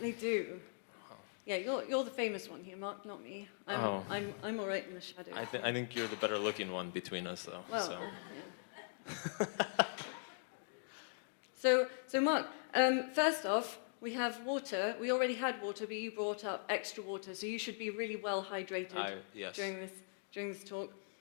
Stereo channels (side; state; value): right; silent; digital silence